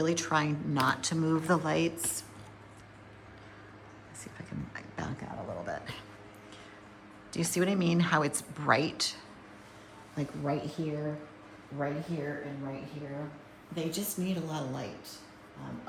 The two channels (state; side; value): identical; both; correlation 1.00